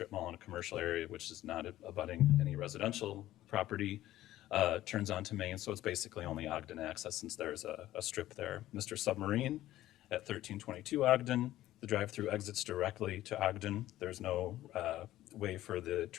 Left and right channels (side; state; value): right; quieter; 14.6 dB